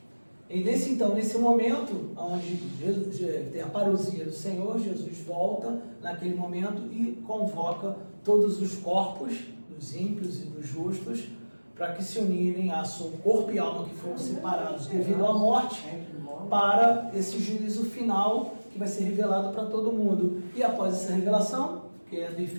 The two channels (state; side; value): inverted; both; correlation -1.00